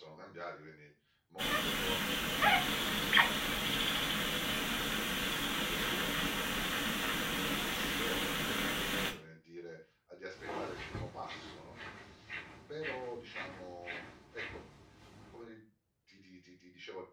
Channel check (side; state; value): both; identical; correlation 1.00